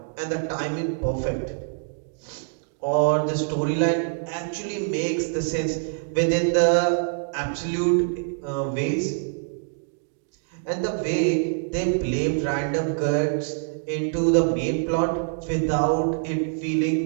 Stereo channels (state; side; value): silent; left; digital silence